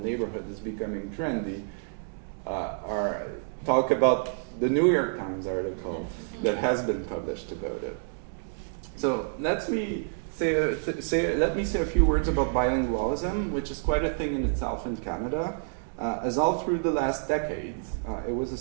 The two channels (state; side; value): silent; left; digital silence